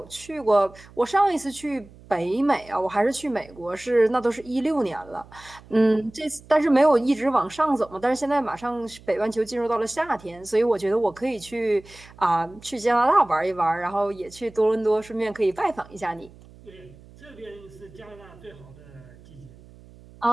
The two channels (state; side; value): noise; right; hum, 22 dB below the sound